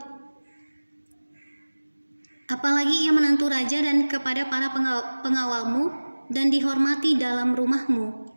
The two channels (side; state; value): both; inverted; correlation -1.00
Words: Apalagi ia menantu raja dan kepada para pengawalmu dan dihormati dalam rumahmu.